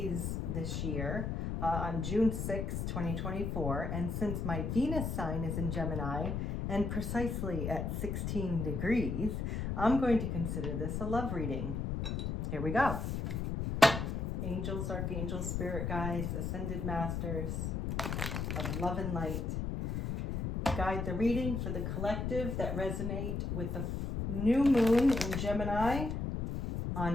this year on June 6, 2024. And since my Venus sign is in Gemini and precisely at 16 degrees, I'm going to consider this a love reading. Here we go. Angels, archangels, spirit guides, ascended masters of love and light. Guide the reading for the collective that resonate with the new moon in Gemini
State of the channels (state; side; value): noise; left; rumble, 2 dB below the sound